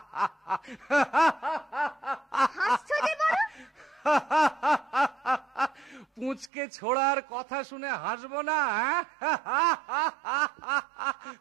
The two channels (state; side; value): drops out; left; at 6.5 s